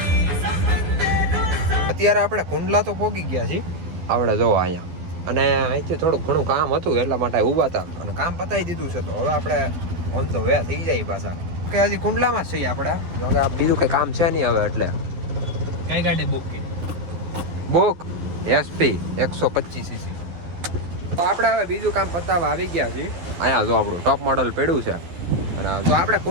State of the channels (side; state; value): left; late; 12 ms